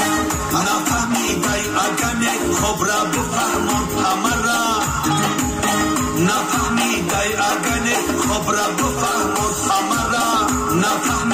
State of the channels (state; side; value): identical; both; correlation 1.00